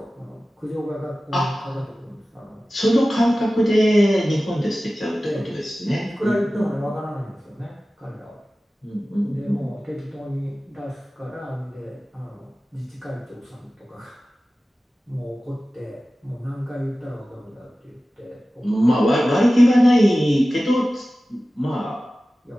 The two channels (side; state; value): both; normal; correlation 0.96